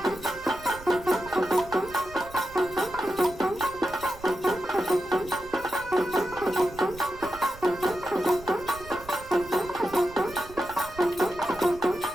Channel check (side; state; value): right; noise; rumble, 18 dB below the sound